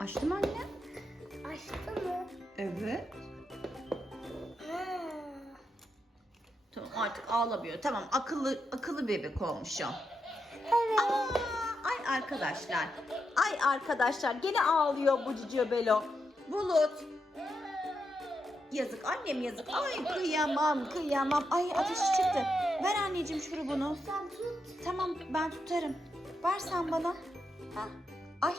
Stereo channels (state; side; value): normal; both; correlation 0.84